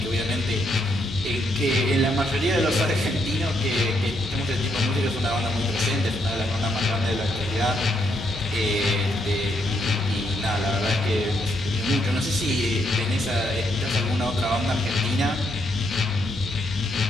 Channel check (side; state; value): both; normal; correlation 0.76